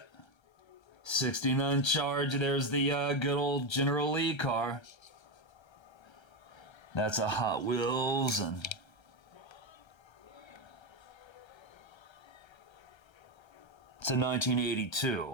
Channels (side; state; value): right; late; 1.3 ms